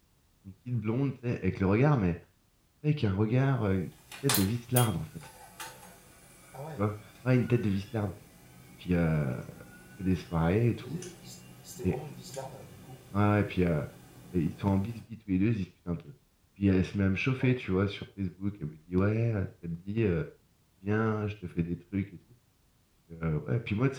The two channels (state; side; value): identical; both; correlation 1.00